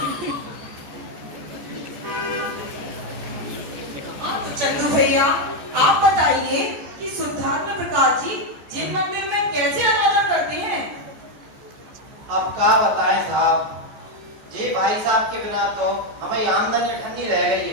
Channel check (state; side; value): late; left; 14 ms